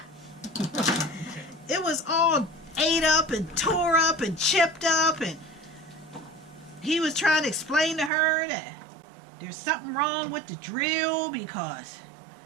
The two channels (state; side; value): drops out; left; at 8.1 s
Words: It was all ate up and tore up and chipped up, and he was trying to explain to her that there's something wrong with the drill because